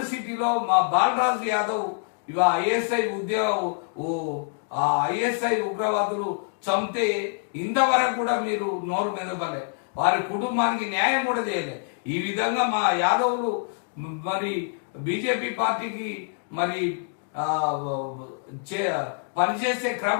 సిటీలో మా బాలరాజు యాదవ్ ఇవ ఐఎస్ఐ ఉగ్రవాదులు చంపితే ఇంతవరకు కూడా మీరు నోరు మెదపలే, వారి కుటుంబానికి న్యాయం కూడా చేయలేదు. ఈ విధంగా మా యాదవులు మరి బీజేపీ పార్టీకి మరి పనిచేసే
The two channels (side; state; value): right; silent; 61 dB below the other